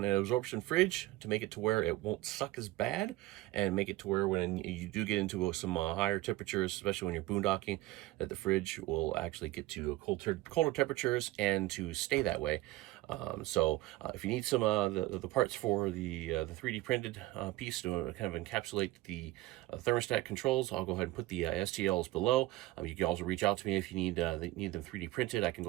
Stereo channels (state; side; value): quieter; left; 17.6 dB